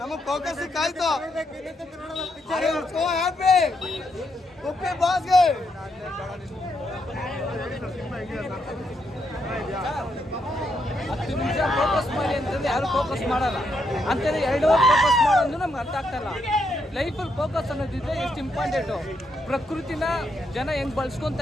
ಫೋಕಸ್ ಸಿಕ್ಕಾಯ್ತು. ಹ್ಯಾಪಿ ಉಪ್ಪಿ ಬಾಸ್ಗೆ. 10 ನಿಮಿಷ ಫೋಕಸ್ ಮಾಡಿ ಅಂತಂದ್ರೆ ಯಾರು ಫೋಕಸ್ ಮಾಡಲ್ಲ. ಅಂತಂದ್ರೆ 2 ಅವರ್ ಫೋಕಸ್ ಮಾಡೋದು ನಮ್ಗೆ ಅರ್ಥ ಆಗ್ತಾಯಿಲ್ಲ. ಲೈಫಲ್ಲಿ ಫೋಕಸ್ ಅನ್ನೋದಿದ್ರೆ ಎಷ್ಟು ಇಂಪಾರ್ಟೆಂಟು. ಪ್ರಕೃತಿನ ಜನ ಹೆಂಗೆ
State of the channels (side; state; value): both; normal; correlation 0.79